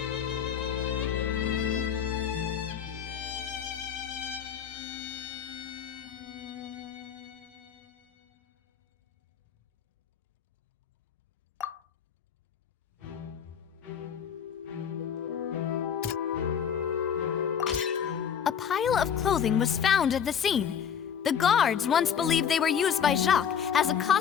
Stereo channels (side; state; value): right; quieter; 7.9 dB